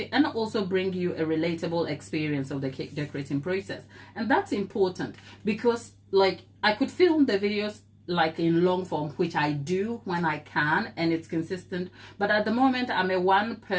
and also bring you a relatable experience of the cake decorating process. And that's important because, like, I could film the videos like in long form, which I do when I can, and it's consistent, but at the moment I'm a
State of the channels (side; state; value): both; identical; correlation 1.00